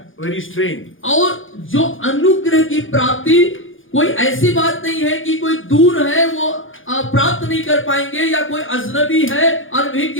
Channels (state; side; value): late; right; 0.58 ms